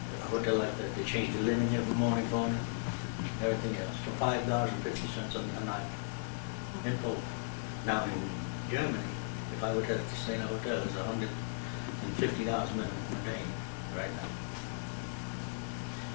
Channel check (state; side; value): silent; right; digital silence